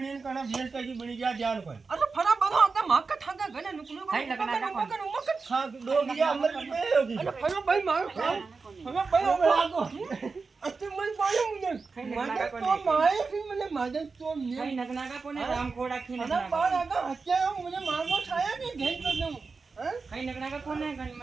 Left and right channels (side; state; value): left; quieter; 4.5 dB